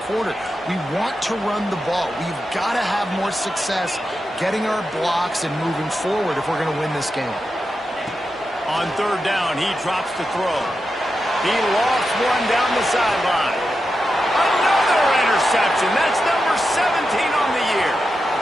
quarter. We want to run the ball. We've got to have more success getting our blocks and moving forward if we're going to win this game. On third down, he drops to throw. He lost one down the sideline. Another interception. That's number 17 on the year.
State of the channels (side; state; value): both; normal; correlation 0.89